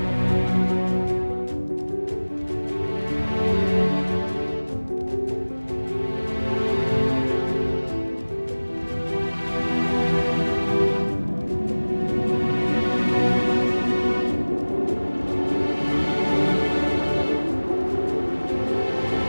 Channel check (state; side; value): inverted; both; correlation -1.00